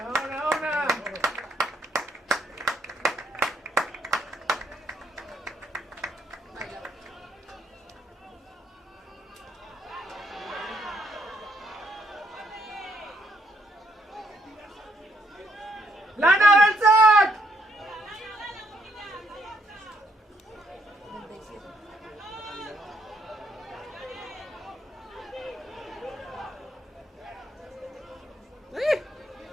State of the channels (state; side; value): normal; both; correlation 0.72